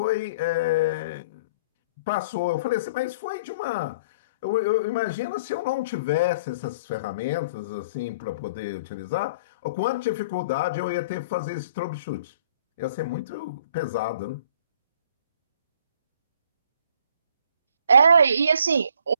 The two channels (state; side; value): inverted; both; correlation -0.54